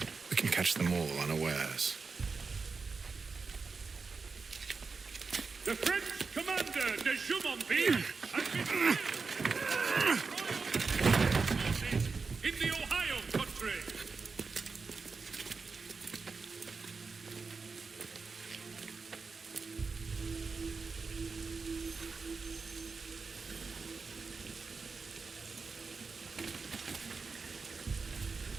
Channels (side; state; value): left; quieter; 4.6 dB